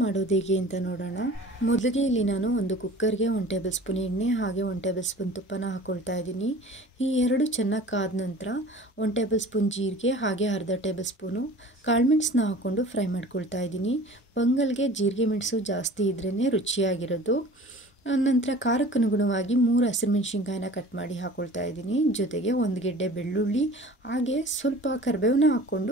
ಹೇಗೆ ಅಂತ ನೋಡೋಣ. ಮೊದಲಿಗೆ ಇಲ್ಲಿ ನಾನು ಒಂದು ಕುಕ್ಕರ್ಗೆ 1 ಟೇಬಲ್ ಸ್ಪೂನ್ ಎಣ್ಣೆ ಹಾಗೆ 1 ಟೇಬಲ್ ಸ್ಪೂನ್ ತುಪ್ಪನ ಹಾಕ್ಕೊಳ್ತಾ ಇದ್ದೀನಿ. ಈ ಎರಡು ಚೆನ್ನಾಗಿ ಕಾದ ನಂತರ 1 ಟೇಬಲ್ ಸ್ಪೂನ್ ಜೀರಿಗೆ ಹಾಗೆ ಅರ್ಧ ಟೇಬಲ್ ಸ್ಪೂನು ಕಾಳುಮೆಣಸನ್ನ ಹಾಕ್ಕೊಂಡು ಫ್ರೈ ಮಾಡ್ಕೊಳ್ತಾ ಇದ್ದೀನಿ. ಪೊಂಗಲ್ಗೆ ಜೀರಿಗೆ ಮೆಣಸು ಜಾಸ್ತಿ ಇದ್ರೇ ರುಚಿಯಾಗಿರೋದು. ನಂತರ ಖಾರಕ್ಕೆ ಅನುಗುಣವಾಗಿ 3 ಹಸಿರುಮೆಣಸಿನ್ಕಾಯಿನ ಕಟ್ ಮಾಡಿ ಹಾಕ್ಕೊಳ್ತಾ ಇದ್ದೀನಿ. ಜೊತೆಗೆ 1 ಗೆಡ್ಡೆ ಬೆಳ್ಳುಳ್ಳಿ ಹಾಗೆ ಸ್ವಲ್ಪ ಕರಿಬೇವನ್ನ ಹಾಕ್ಕೊಂಡು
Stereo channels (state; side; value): normal; both; correlation 0.44